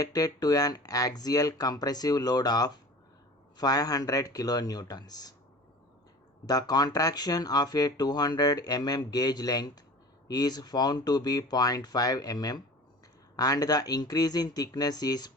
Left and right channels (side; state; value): both; normal; correlation 0.40